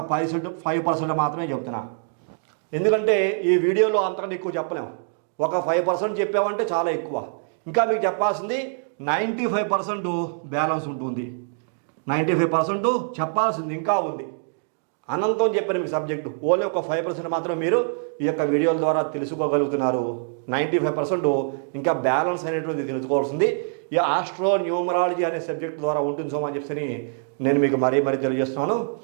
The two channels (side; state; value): left; silent; digital silence